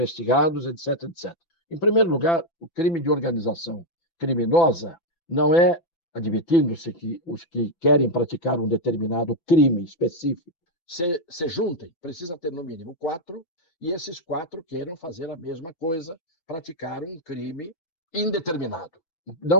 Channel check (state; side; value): late; right; 6.0 ms